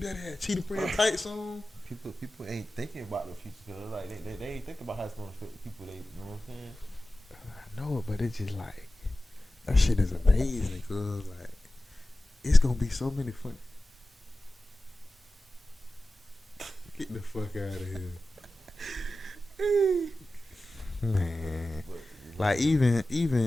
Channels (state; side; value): normal; both; correlation 0.95